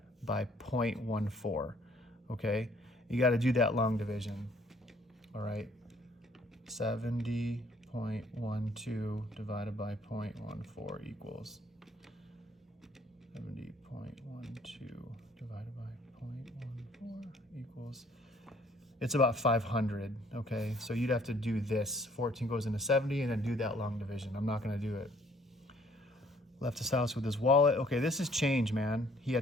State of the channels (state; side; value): normal; both; correlation 0.61